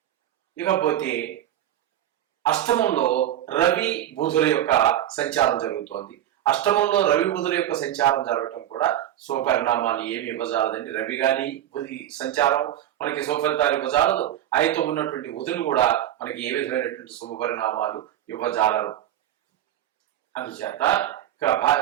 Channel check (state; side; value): quieter; left; 12.0 dB